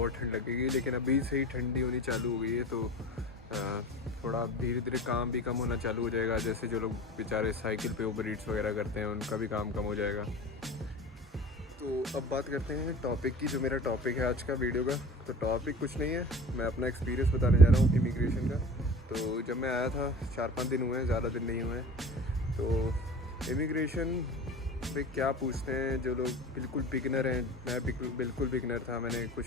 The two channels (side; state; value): both; normal; correlation 0.38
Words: ठंड लगेगी, लेकिन अभी से ही ठंडी होनी चालू हो गई है तो थोड़ा धीरे धीरे काम भी कम होना चालू हो जाएगा। जैसे जो लोग बेचारे साइकिल पे उबर ईट्स वगैरह करते हैं उनका भी काम कम हो जाएगा। तो अब बात करते हैं टॉपिक की। जो मेरा टॉपिक है आज का वीडियो का, तो टॉपिक कुछ नहीं है, मैं अपना एक्सपीरियंस बताने जा रहा हूँ इमिग्रेशन का। तो जब मैं आया था 4-5 दिन हुए हैं, ज़्यादा दिन नहीं हुए हैं। तो इमिग्रेशन पे क्या पूछते हैं जो लोग बिल्कुल बिगनर हैं, मैं बिल्कुल बिगनर था, मैंने